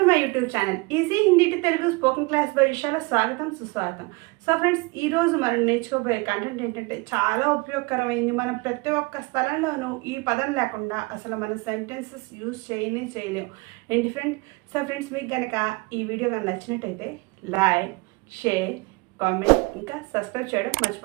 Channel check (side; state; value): left; quieter; 26.3 dB